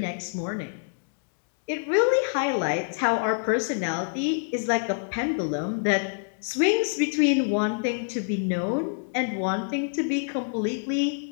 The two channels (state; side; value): silent; right; digital silence